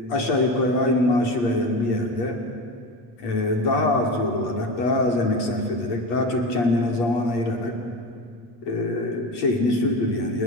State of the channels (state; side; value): late; right; 8.5 ms